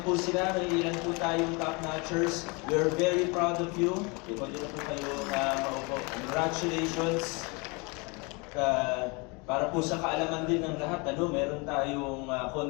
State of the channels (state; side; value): quieter; right; 29.4 dB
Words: po sila, may ilan po tayong top-notchers. We're very proud of you. Pwede na po kayo maupo. Congratulations. Para po sa kaalaman din ng lahat, meron tayong